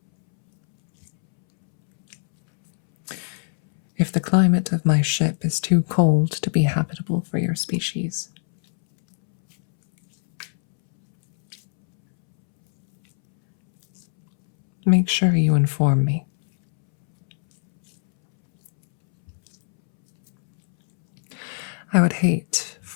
If the climate of my ship is too cold to be habitable for your species, make sure you inform me. I would hate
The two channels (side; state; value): right; silent; 65 dB below the other